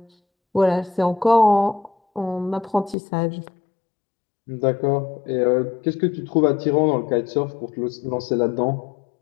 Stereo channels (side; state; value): right; drops out; at 3.0 s